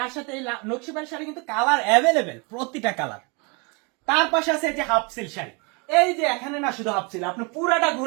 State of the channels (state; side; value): quieter; left; 30.9 dB